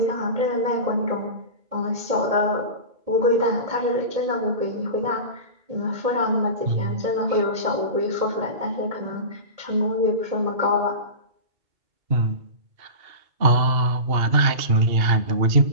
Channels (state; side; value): late; left; 2.7 ms